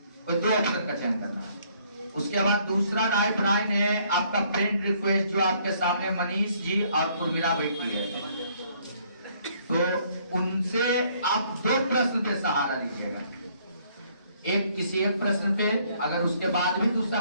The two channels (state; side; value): inverted; both; correlation -0.65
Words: कोई 2 ऑप्शन का चयन करना है। उसके बाद दूसरा राइट लाइन है आपका फ्रेंड रिक्वेस्ट, जो आपके सामने मनीष जी और उर्मिला बैठी है, तो उनसे आप 2 प्रश्न पे सहारा लीजिएगा। एक किसी एक प्रश्न पे, अगर उसके बाद भी दूसरा